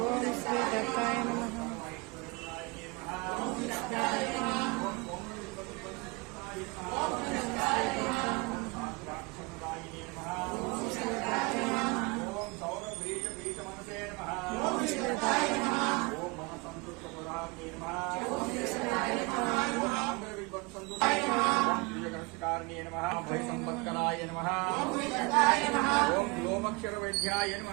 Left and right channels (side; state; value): left; quieter; 27.6 dB